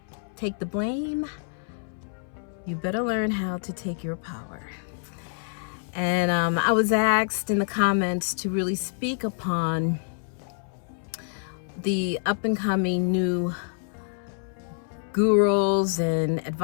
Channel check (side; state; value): right; silent; 60 dB below the other